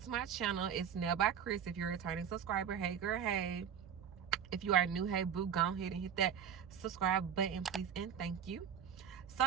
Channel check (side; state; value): left; quieter; 8.2 dB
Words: to my channel. It's Nail by Chris. If you're a returning subscriber, hey girl, hey. If you are new, hey boo, go ahead and hit that subscribe button, please, and thank you. So